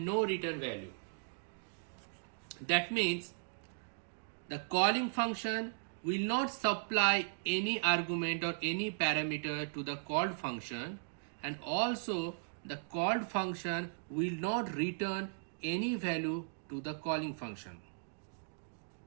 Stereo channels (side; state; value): left; silent; digital silence